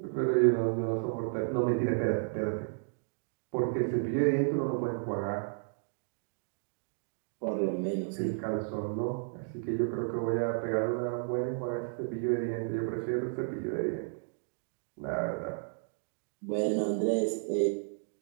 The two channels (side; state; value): left; silent; digital silence